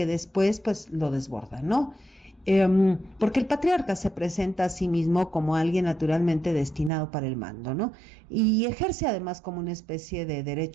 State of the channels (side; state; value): left; drops out; at 6.9 s